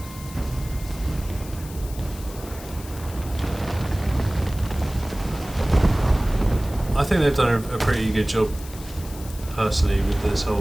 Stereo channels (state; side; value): noise; left; hiss, 17 dB below the sound